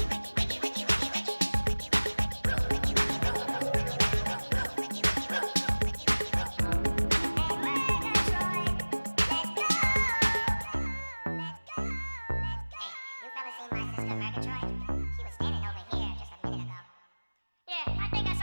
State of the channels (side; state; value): both; inverted; correlation -1.00